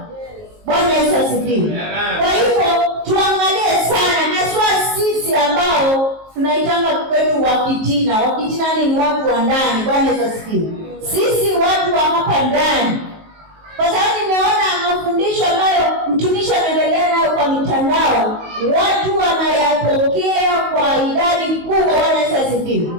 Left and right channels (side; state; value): left; late; 19 ms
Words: Bwana Yesu asifiwe. Kwa hivyo tuangalie sana, haswa sisi ambao tunaitanga kwetu wakitina. Wakitina ni watu wa ndani. Bwana Yesu asifiwe. Sisi watu wa hapa ndani, kwa sababu nimeona mafundisho ambayo mtumishi anaendelea nayo kwa mitandao, watu wanayapokea kwa idadi kubwa. Bwana Yesu asifiwe.